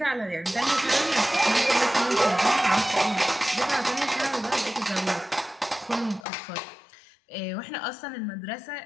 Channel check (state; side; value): drops out; right; at 6.2 s